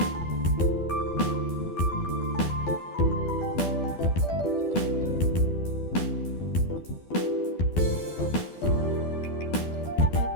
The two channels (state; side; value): late; right; 12 ms